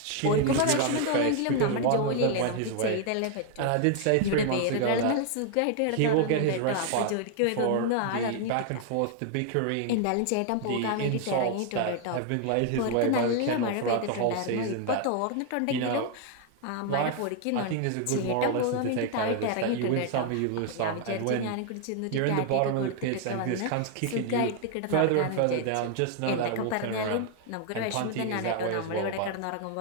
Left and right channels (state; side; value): different; both; correlation 0.00